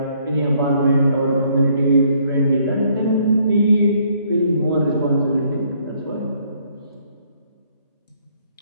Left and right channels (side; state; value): both; inverted; correlation -0.66